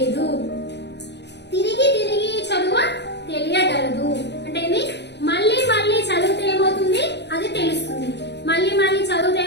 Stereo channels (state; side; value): late; right; 0.50 ms